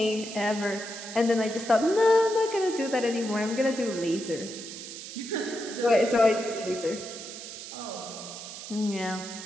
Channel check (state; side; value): noise; right; hiss, 11 dB below the sound